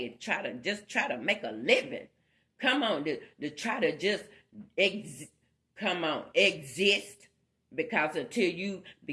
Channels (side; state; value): both; identical; correlation 1.00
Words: and try to make a living. Come on, to try to just exist. Because until you